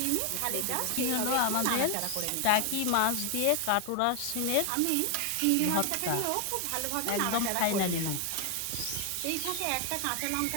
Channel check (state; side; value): different; both; correlation 0.00